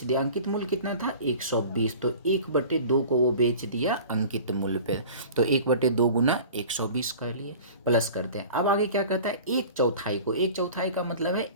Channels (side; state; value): both; inverted; correlation -0.41